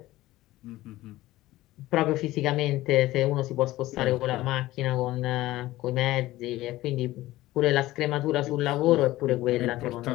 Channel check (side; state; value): right; quieter; 16.9 dB